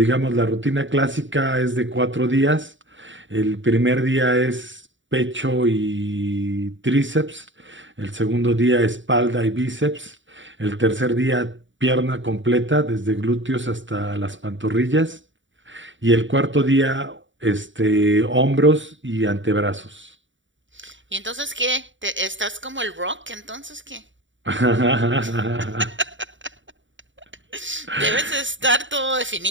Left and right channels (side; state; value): left; late; 0.55 ms